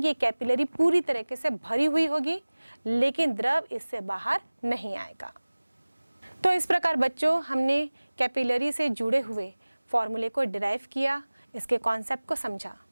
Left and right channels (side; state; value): both; inverted; correlation -1.00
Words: कि कैपिलरी पूरी तरीके से भरी हुई होगी लेकिन द्रव इससे बाहर नहीं आएगा। तो इस प्रकार बच्चों हमने कैपिलरी से जुड़े हुए फॉर्मूले को डिराइव किया, इसके कॉन्सेप्ट को समझा।